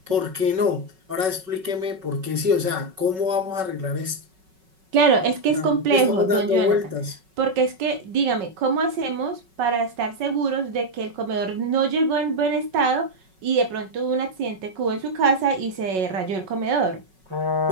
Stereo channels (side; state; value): left; late; 5.4 ms